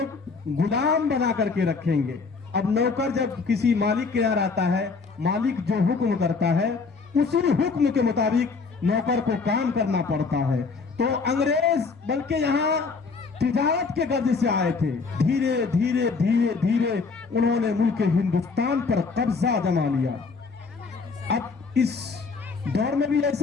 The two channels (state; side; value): quieter; right; 4.6 dB